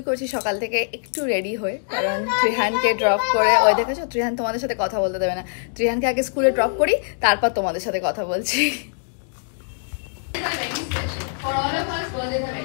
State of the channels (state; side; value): silent; right; digital silence